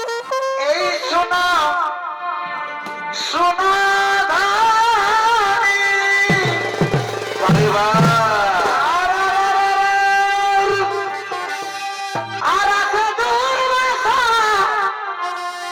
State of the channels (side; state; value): both; identical; correlation 1.00